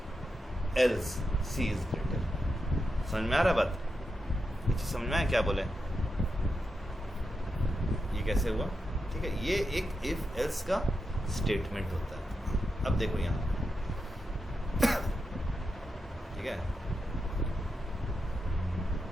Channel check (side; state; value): both; normal; correlation 0.87